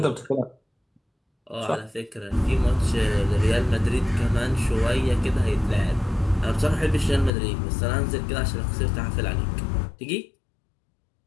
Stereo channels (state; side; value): drops out; right; at 7.3 s